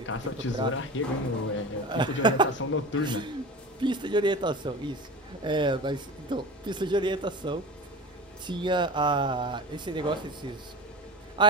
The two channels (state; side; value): normal; both; correlation 0.32